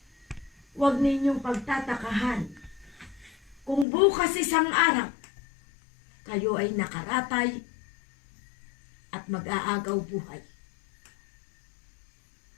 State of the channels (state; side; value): drops out; right; at 3.9 s